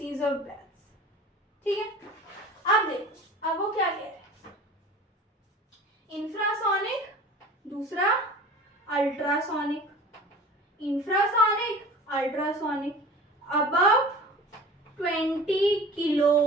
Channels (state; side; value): normal; both; correlation 0.41